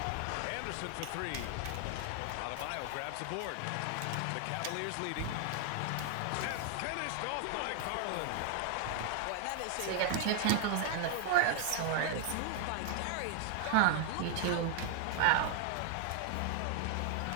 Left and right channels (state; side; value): different; both; correlation 0.00